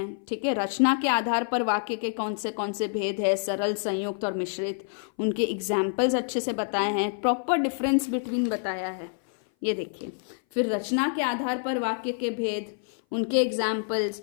ठीक है। रचना के आधार पर वाक्य के कौन से भेद है, सरल, संयुक्त और मिश्रित, उनके एग्जाम्पल्स अच्छे से बताए हैं, प्रॉपर डिफरेंस बिटवीन बताया है, ये देखिए। फिर रचना के आधार पर वाक्य के भेद, उनके एग्जाम्पल्स,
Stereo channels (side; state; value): right; silent; 57 dB below the other